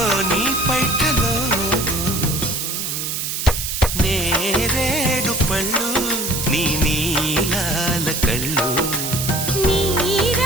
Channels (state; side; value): noise; right; hiss, 3 dB below the sound